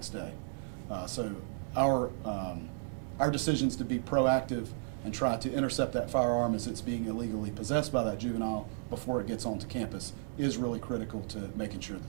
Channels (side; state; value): left; silent; digital silence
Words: day. So our decisions to be proactive and try to intercept that firearm as it's being illegally possessed by that juvenile before it gets onto campus is really critical to making sure